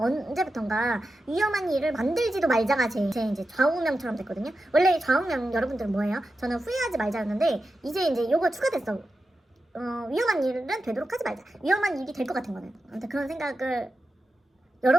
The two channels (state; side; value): normal; both; correlation 0.91